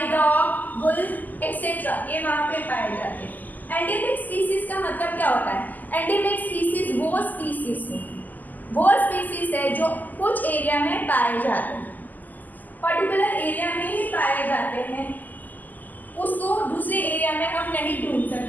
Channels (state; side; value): late; right; 0.083 ms